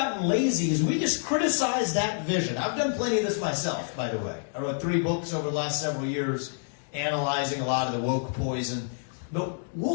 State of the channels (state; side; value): silent; right; digital silence